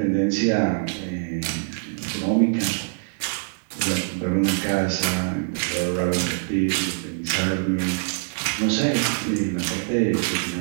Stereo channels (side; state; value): left; silent; digital silence